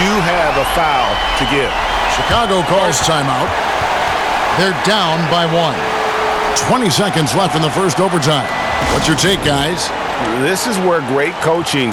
do have a foul to give. Chicago calls timeout. They're down by 1. 20 seconds left in the first overtime. What's your take, guys? This is where great coaching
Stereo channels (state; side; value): identical; both; correlation 1.00